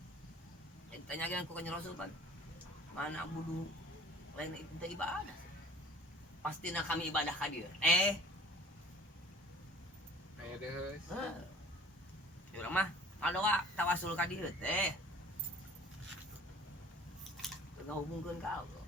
Tanyakeun ku Kanjeng Rasul kan. Mana budu lain itu ibadah. Pastina kami ibadah ka dieu. aya deus. Urang mah ngadoa tawasul ka dieu teh. Ngahubungkeun ka Allah.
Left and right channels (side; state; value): both; normal; correlation 0.47